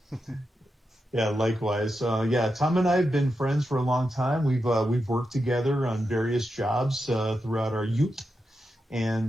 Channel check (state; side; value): normal; both; correlation 0.88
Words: Yeah, likewise. Tom and I have been friends for a long time. We've worked together on various jobs throughout our youth,